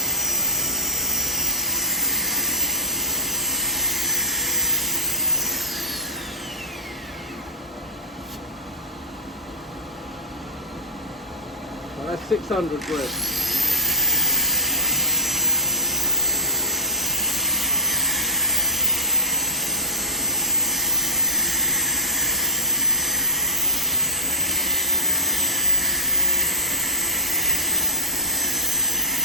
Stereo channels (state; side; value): normal; both; correlation -0.13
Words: that's 600 grit.